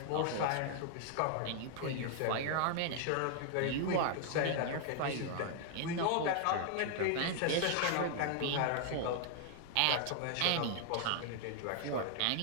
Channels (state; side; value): different; both; correlation 0.00